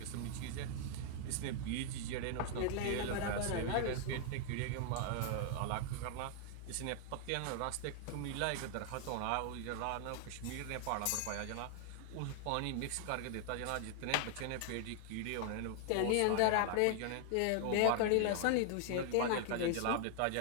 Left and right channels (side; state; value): both; different; correlation 0.00